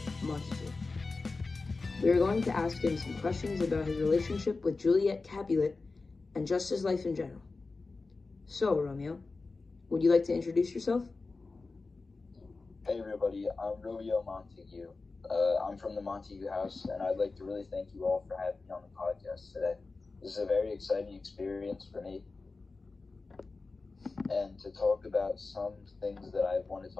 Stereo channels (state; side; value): quieter; right; 3.8 dB